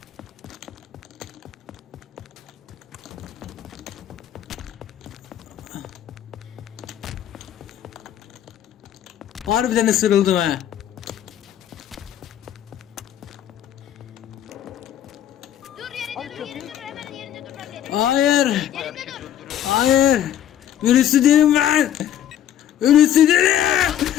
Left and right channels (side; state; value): right; quieter; 10.8 dB